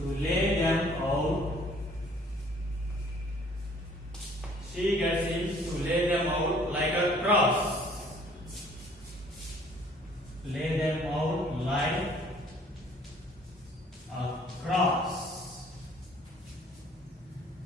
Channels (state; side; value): normal; both; correlation 0.57